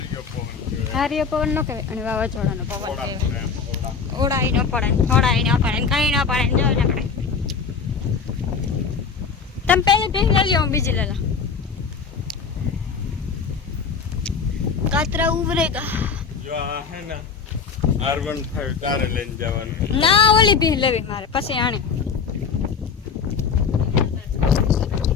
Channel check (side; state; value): right; quieter; 5.8 dB